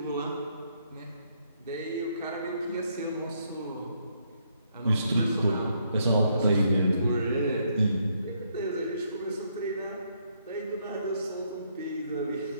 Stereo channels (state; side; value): inverted; both; correlation -0.73